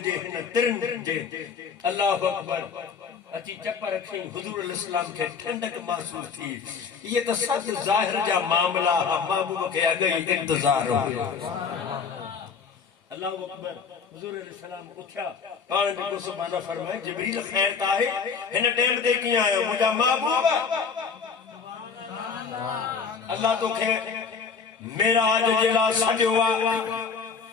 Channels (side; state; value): right; quieter; 5.8 dB